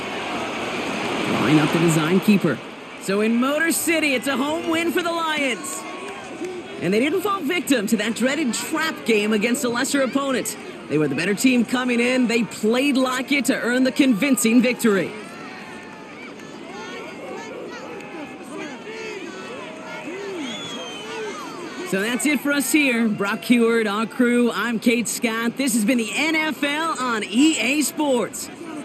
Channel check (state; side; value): identical; both; correlation 1.00